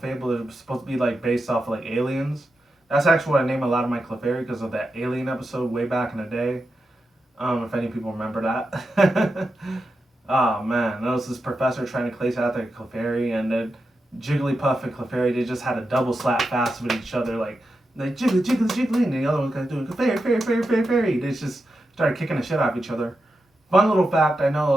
are supposed to be like based off of like aliens. That's actually what I name a lot of my Clefairy, because of that Alien episode way back in the day. If any people remember that. Oh man, that was this professor trying to place out their Clefairy, and then Jigglypuff and Clefairy, they just had a double slap fast with each other, like jiggly, jiggly, jiggly, and the other one kind of doing Clefairy, fairy, fairy, fairy, fairy. They just started kicking the shit out of each other. Fun little fact, I know a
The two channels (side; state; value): both; normal; correlation 0.89